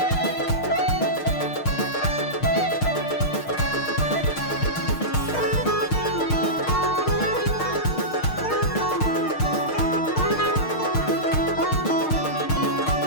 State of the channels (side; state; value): right; late; 6.5 ms